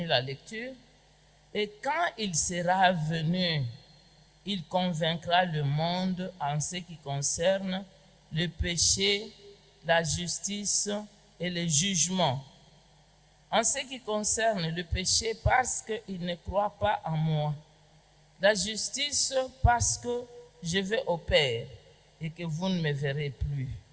la lecture. Et quand il sera venu, il convaincra le monde en ce qui concerne le péché, la justice et le jugement. En ce qui concerne le péché, parce qu'il ne croit pas en moi. La justice, parce que je vais au Père et que vous ne me verrez plus.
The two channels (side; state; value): both; identical; correlation 1.00